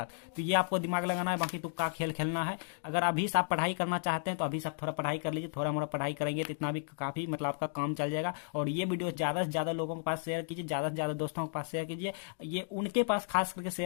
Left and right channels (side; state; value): right; silent; digital silence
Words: तो ये आपको दिमाग लगाना है, बाकी तुक्का खेल खेलना है। अगर अभी से आप पढ़ाई करना चाहते हैं तो अभी से आप थोड़ा पढ़ाई कर लीजिए, थोड़ा मोड़ा पढ़ाई करेंगे तो इतना भी काफी मतलब आपका काम चल जाएगा। और ये वीडियो ज्यादा से ज्यादा लोगों के पास शेयर कीजिए, ज्यादा से ज्यादा दोस्तों के पास शेयर कीजिए, ये उनके पास खास करके